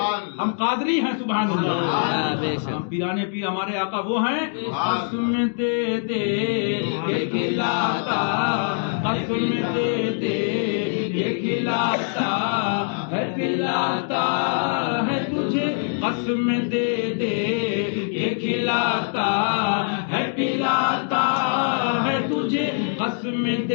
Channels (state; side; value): silent; right; digital silence